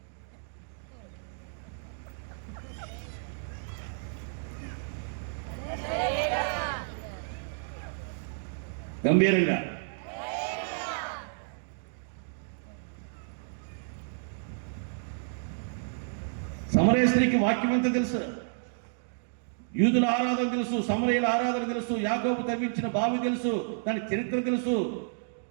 గంభీరంగా సమరయ స్త్రీకి వాక్యం ఎంత తెలుసు, యూదుల ఆరాధన తెలుసు, సమరయుల ఆరాధన తెలుసు, యాకోబు తవ్వించిన బావి తెలుసు, దాని చరిత్ర తెలుసు,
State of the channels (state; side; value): silent; left; digital silence